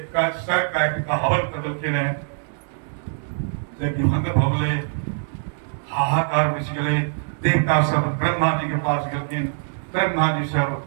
का सर का हवन कर दलकिन है जब भंग भवले हाहाकार मच गए देवता सब ब्रह्मा जी के पास गए ब्रह्मा जी सब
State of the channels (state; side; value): silent; left; digital silence